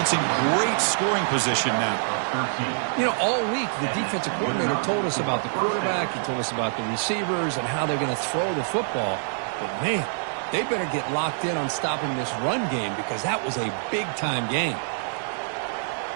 in great scoring position now. You know, all week the defensive coordinator told us about the quarterback. He told us about the receivers and how they're going to throw the football. But, man, they better get locked in on stopping this run game because that was a big-time game.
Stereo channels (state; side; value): silent; left; digital silence